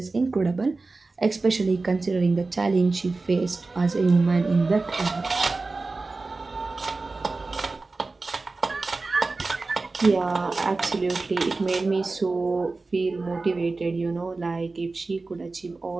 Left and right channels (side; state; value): left; quieter; 3.6 dB